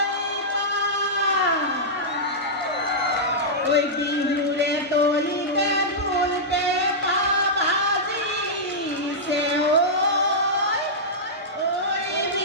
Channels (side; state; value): both; normal; correlation -0.11